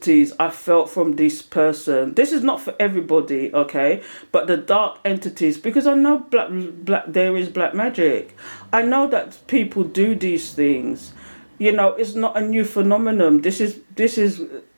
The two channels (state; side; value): inverted; both; correlation -1.00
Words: I felt from this person, this is not for everybody, okay? But the dark entities, because I know there is black magic. I know that people do these things. You know, it's not a new phenomenon. This is